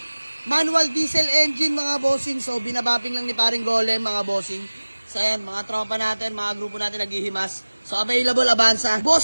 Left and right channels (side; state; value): both; inverted; correlation -1.00